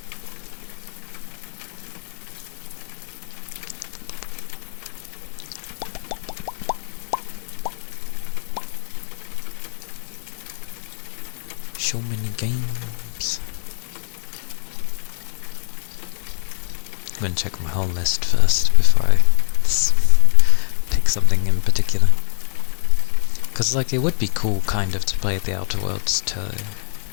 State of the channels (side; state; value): right; silent; 64 dB below the other